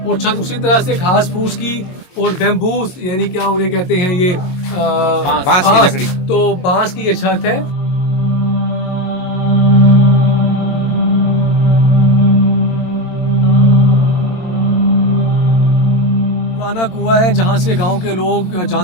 और छत उसी तरह से घास फूस की और बैम्बूस, यानी क्या उन्हें कहते हैं ये बांस की लकड़ी। तो बांस की ये छत है। पुराना कुआं है जहाँ से गांव के लोग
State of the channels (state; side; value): late; right; 22 ms